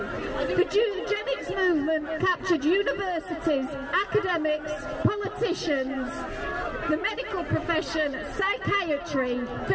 eugenics movement captured universities, academics, politicians, the medical profession, psychiatry,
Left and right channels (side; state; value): both; identical; correlation 1.00